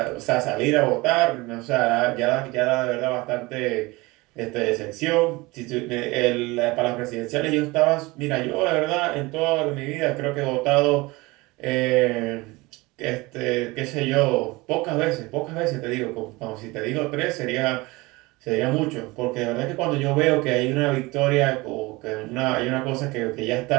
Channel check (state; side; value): quieter; left; 22.7 dB